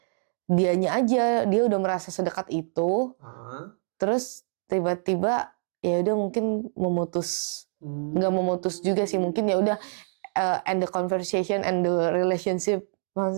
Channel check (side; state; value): left; silent; 59 dB below the other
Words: dianya aja dia udah merasa sedekat itu, terus tiba-tiba ya udah mungkin memutus, nggak memutus juga sih, mungkin ya udah end the conversation and the relationship,